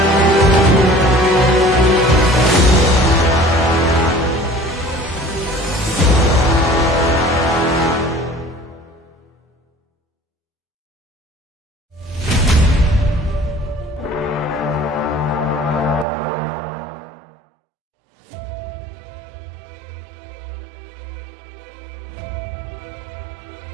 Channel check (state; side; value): drops out; left; at 16.1 s